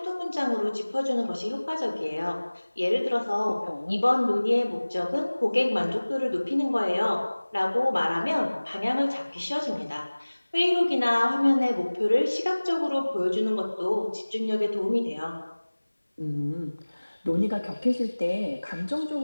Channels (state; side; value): inverted; both; correlation -1.00